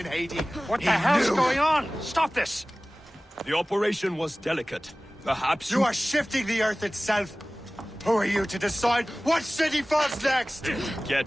Haiti. What the hell's going on? Stop this! The operation was delicate. Perhaps you are shifting the earth itself. Who are you to decide what city falls next? Get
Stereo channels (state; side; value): normal; both; correlation 0.98